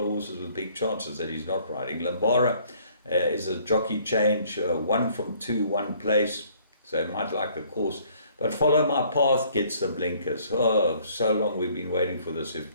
of horses with big chances that he's not riding. Limbara is a jockey change, 1 from 2, 1 place, so he might like the course. But Follow My Path gets the blinkers. Oh, so long we've been waiting for this.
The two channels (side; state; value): both; inverted; correlation -0.60